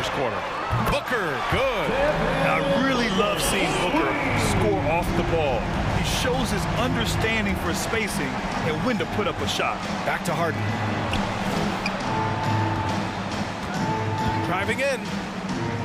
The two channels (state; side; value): identical; both; correlation 1.00